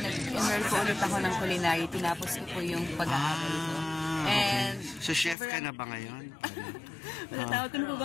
po ulit ako ng culinary. Tinapos ko po yung pag-aaral ko. And so, chef ka na ba ngayon? Matatawag ko na po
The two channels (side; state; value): right; drops out; at 5.4 s